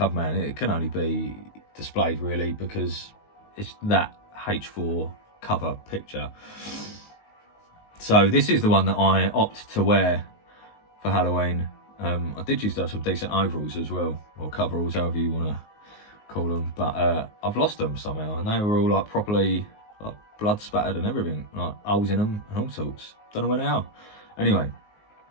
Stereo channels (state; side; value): late; right; 19 ms